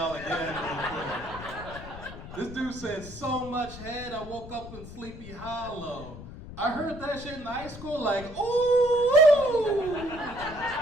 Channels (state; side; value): noise; left; rumble, 13 dB below the sound